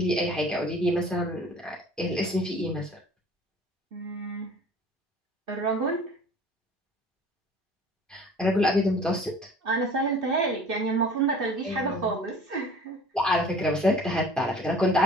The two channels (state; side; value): normal; both; correlation 0.47